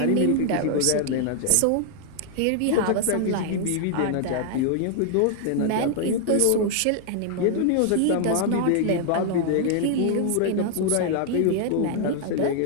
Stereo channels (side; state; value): both; different; correlation 0.00